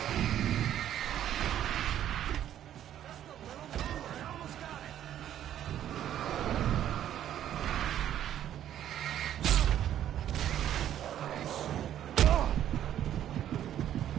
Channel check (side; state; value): left; quieter; 11.1 dB